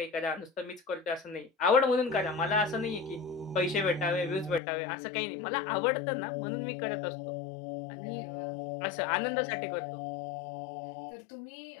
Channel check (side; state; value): right; drops out; at 4.6 s